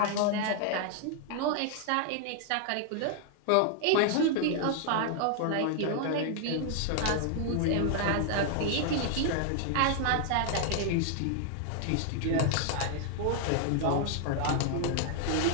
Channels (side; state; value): both; different; correlation 0.00